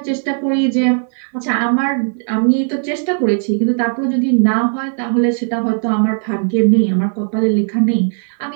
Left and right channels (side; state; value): left; silent; 68 dB below the other